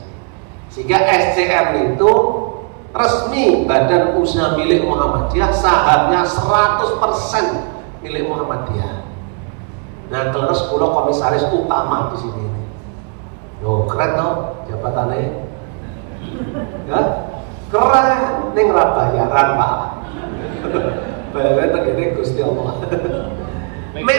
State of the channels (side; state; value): left; quieter; 38.3 dB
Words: Sehingga SCM itu resmi badan usaha milik Muhammadiyah, sahamnya 100% milik Muhammadiyah. Nah, terus pulau komisaris utama di sini. Loh, keren toh jabatannya. Ya? Keren, ning ra bayaran, Pak. Bayaran tegene Gusti Allah.